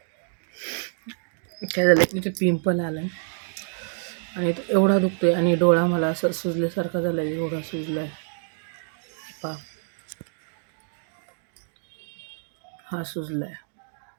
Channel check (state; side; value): silent; left; 60 dB below the other